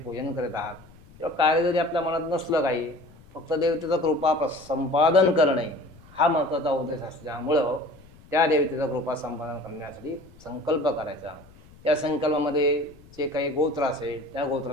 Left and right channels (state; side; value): noise; left; rumble, 24 dB below the sound